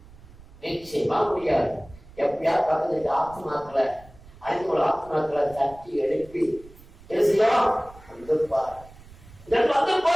நிச்சயமா முடியாது. எப்பயாவது பக்கத்துல ஆத்மாக்களை அனைத்து ஆத்மாக்களை தட்டி எழுப்பி பேசலாம்.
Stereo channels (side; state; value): right; noise; rumble, 22 dB below the sound